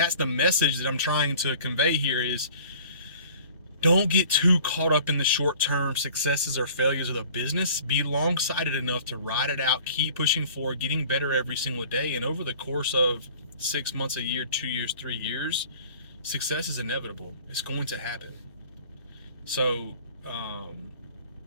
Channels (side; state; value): both; inverted; correlation -0.47